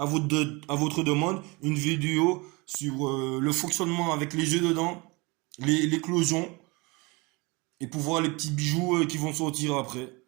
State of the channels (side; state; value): left; quieter; 26.3 dB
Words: votre demande une vidéo sur le fonctionnement avec les œufs dedans, l'éclosion, et pour voir les petits bijoux qui vont sortir après.